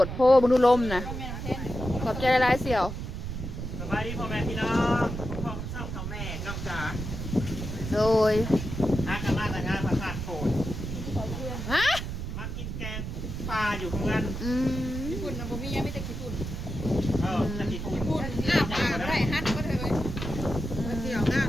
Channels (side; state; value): right; noise; rumble, 6 dB below the sound